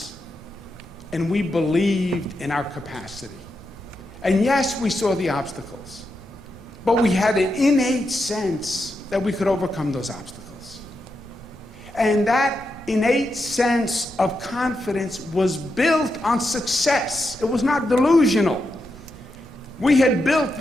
and we believed in our capacity. And yes, we saw the obstacles, but we had an innate sense that we could overcome those obstacles. And that innate sense of confidence was built on success. It was not delusional. We had built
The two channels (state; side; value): normal; both; correlation 0.86